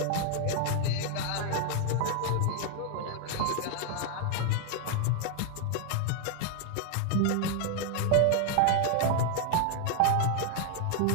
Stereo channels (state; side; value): different; both; correlation 0.00